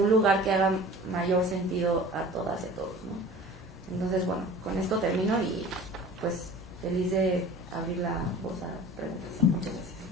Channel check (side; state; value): both; normal; correlation 0.42